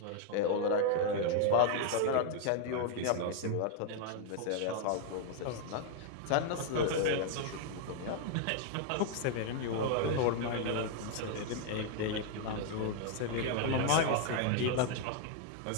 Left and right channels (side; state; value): both; different; correlation 0.00